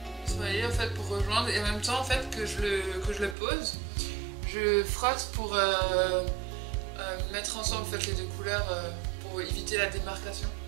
Vous voyez, en fait, pour rejoindre, et en même temps en fait que je le pose, je frotte pour mettre ensemble en fait les deux couleurs pour éviter la démarcation.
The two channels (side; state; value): left; drops out; at 3.4 s